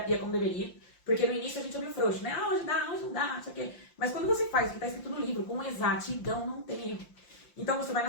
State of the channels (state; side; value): late; right; 5.7 ms